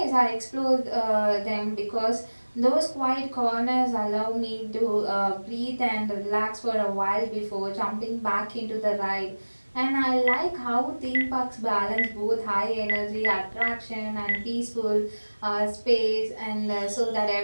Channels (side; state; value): both; inverted; correlation -1.00